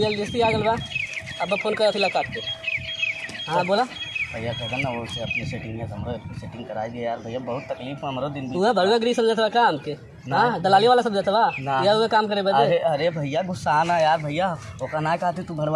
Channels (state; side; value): identical; both; correlation 1.00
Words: आ गल बा। अब फोन करत हिला काट के। हाँ बोला भैया कहता ना वो से अपनी सेटिंग है, हमरो सेटिंग कराई दे यार भैया, बहुत तकलीफ में हमरो दिन तू है भड़ुआ गिरी समझत बा काम के? हाँ दलाली वाला समझत बा ना। या हुए काम करे बदे? अरे अरे भैया गुस्सा ना यार भैया, ओका ना कहते तू